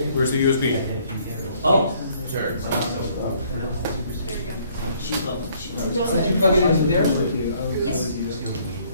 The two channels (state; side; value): inverted; both; correlation -0.63